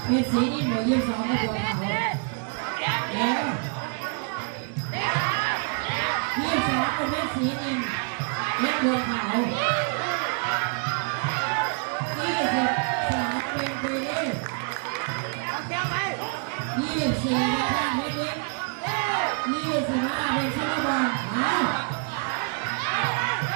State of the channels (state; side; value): quieter; left; 39.5 dB